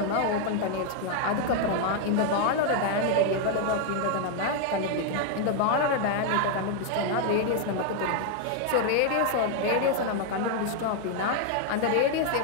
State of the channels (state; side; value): different; both; correlation 0.00